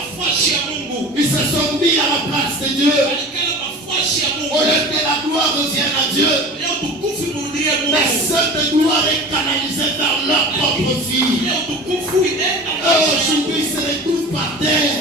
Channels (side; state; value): both; normal; correlation 0.36